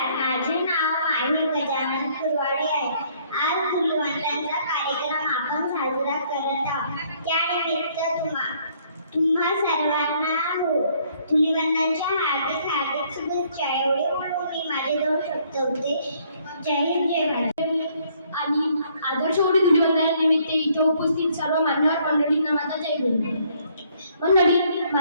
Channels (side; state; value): both; inverted; correlation -0.65